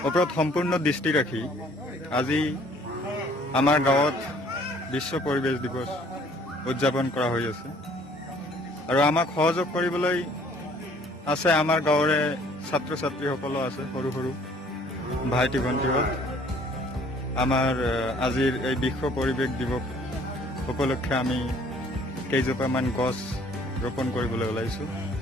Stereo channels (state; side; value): normal; both; correlation 0.57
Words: ওপৰত সম্পূৰ্ণ দৃষ্টি ৰাখি আজি আমাৰ গাঁৱত বিশ্ব পৰিৱেশ দিৱস উদযাপন কৰা হৈ আছে আৰু আমাক সহযোগ কৰিবলৈ আছে আমাৰ গাঁৱৰে ছাত্ৰ ছাত্ৰীসকলো আছে, সৰু সৰু ভাইটি ভণ্টিহঁত। আমাৰ আজিৰ এই বিশ্ব পৰিৱেশ দিৱস উপলক্ষে আমি কেইজোপামান গছ ৰোপণ কৰিবলৈ ওলাইছোঁ।